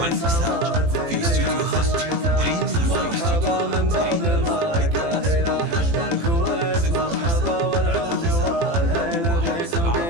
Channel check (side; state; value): left; late; 18 ms